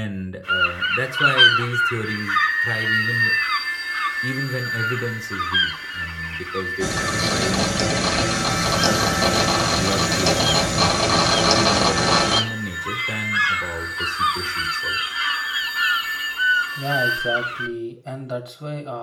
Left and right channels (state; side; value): identical; both; correlation 1.00